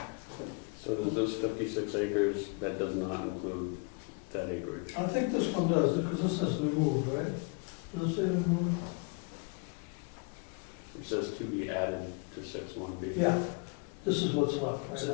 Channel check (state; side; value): quieter; right; 32.9 dB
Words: So does this 56 acres, that does not include that acreage? I think this one does, because this says removed, right? Does it say removed? It says to be added to 6-1B. Yeah, this is what's left right